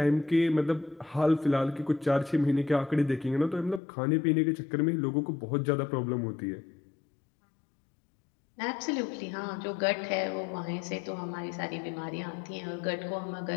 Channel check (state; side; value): drops out; right; at 3.8 s